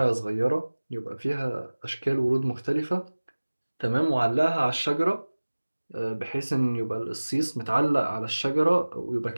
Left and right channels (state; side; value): inverted; both; correlation -1.00